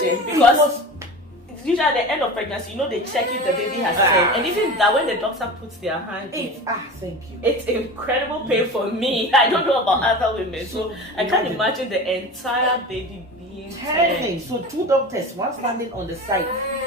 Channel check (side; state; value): both; normal; correlation 0.32